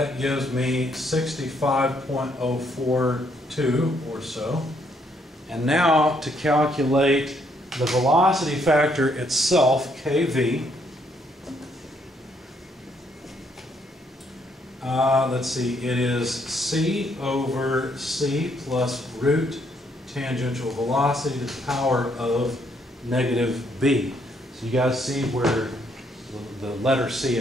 gives me 65.042 or so. And now to calculate the velocity factor itself, kV, let's see, it is C over C plus root tangential velocity to the power of negative B. So you guys see where the letter C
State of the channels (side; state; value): both; normal; correlation 0.71